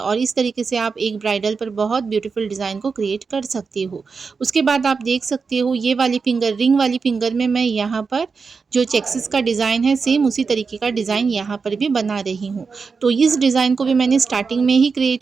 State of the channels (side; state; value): left; quieter; 5.0 dB